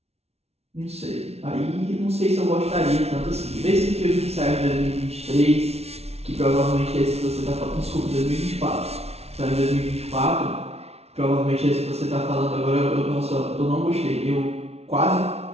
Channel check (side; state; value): left; late; 0.31 ms